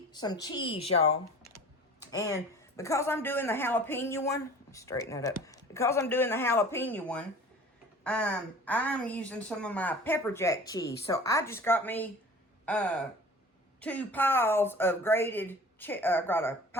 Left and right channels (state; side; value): normal; both; correlation 0.44